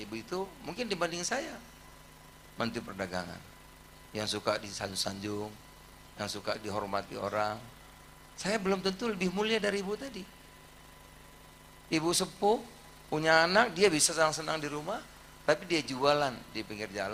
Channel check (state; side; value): identical; both; correlation 1.00